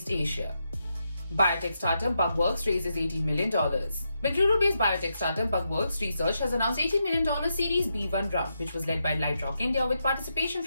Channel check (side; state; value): both; inverted; correlation -0.84